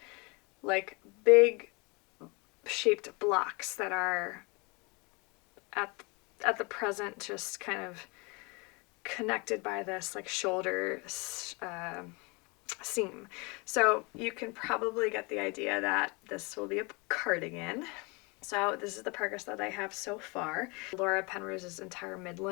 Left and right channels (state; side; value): quieter; right; 29.1 dB